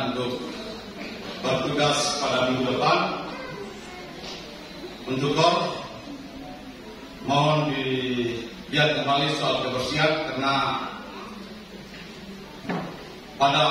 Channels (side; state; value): both; identical; correlation 1.00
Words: untuk bertugas pada minggu depan, untuk Kor mohon dilihat kembali soal kebersihan, karena